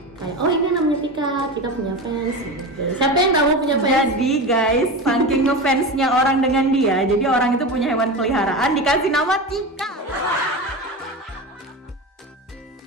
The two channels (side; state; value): both; normal; correlation 0.24